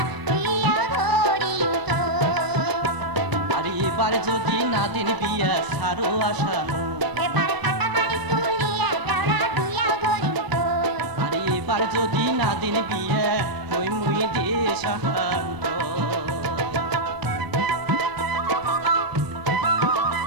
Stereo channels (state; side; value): late; left; 1.2 ms